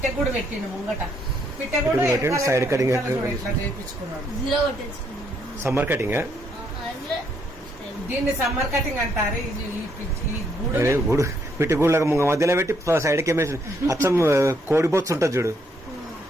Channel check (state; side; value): normal; both; correlation 0.72